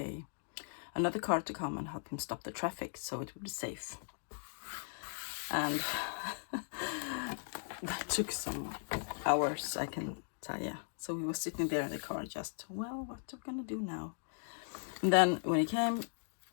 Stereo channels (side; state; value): right; silent; digital silence